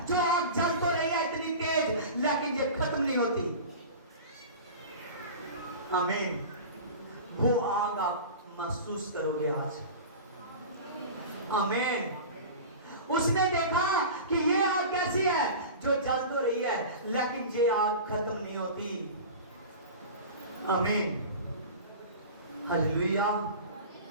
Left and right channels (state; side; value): inverted; both; correlation -0.33